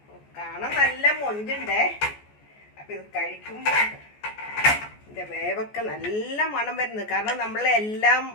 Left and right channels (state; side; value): late; right; 14 ms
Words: കാണാൻ നല്ല മൊഞ്ചുണ്ടേ. അപ്പം ഇത് കഴിക്കുമ്പോൾ ഇതിൻ്റെ വേവൊക്കെ നല്ല മണം വരുന്നത്. കാരണം നമ്മളെല്ലാം